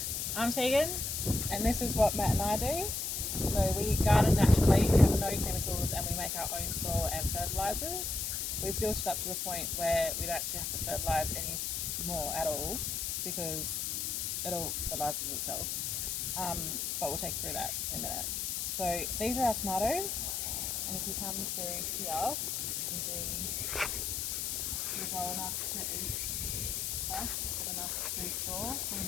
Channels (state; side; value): noise; left; hiss, 1 dB below the sound